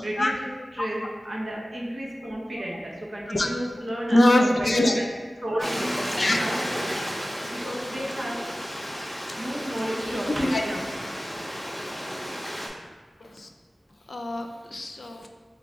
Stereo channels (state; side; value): normal; both; correlation 0.96